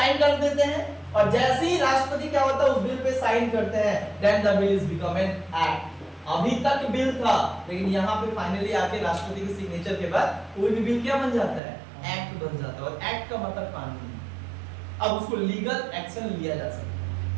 कर देते हैं, और जैसे ही राष्ट्रपति क्या होता है उस बिल पे साइन करते हैं, then the bill is become an act. अभी तक बिल था, लेकिन यहाँ पे फाइनली आके राष्ट्रपति के सिग्नेचर के बाद कोई भी बिल क्या बन जाता है? एक्ट बन जाता है। और एक्ट का मतलब कानून। अब उसको लीगल एक्शन लिया जा सकता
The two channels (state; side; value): drops out; left; at 11.6 s